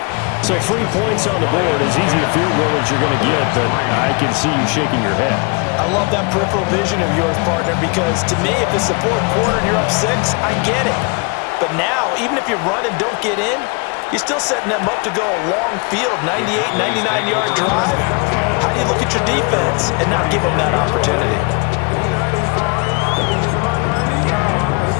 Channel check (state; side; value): quieter; right; 31.5 dB